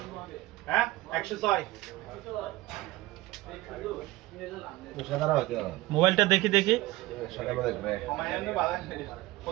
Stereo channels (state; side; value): quieter; left; 19.0 dB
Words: হ্যাঁ 106 মোবাইলটা দেখি দেখি কমায়ানো বালা